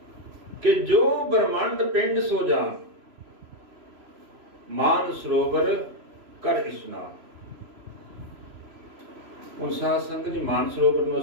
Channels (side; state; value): left; late; 3.0 ms